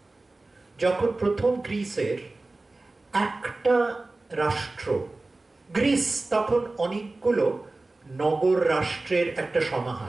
যখন প্রথম গ্রিসের একটা রাষ্ট্র, গ্রিস তখন অনেকগুলো নগর রাষ্ট্রের একটা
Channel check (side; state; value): left; quieter; 3.1 dB